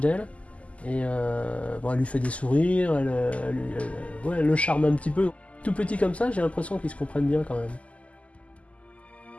Et elle lui fait des sourires, elle le charme un petit peu. Tout petit comme ça, j'ai l'impression qu'ils se comprennent bien quand même.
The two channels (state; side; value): late; right; 0.066 ms